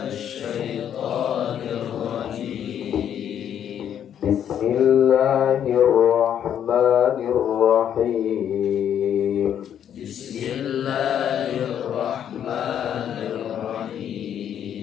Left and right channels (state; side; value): quieter; right; 9.5 dB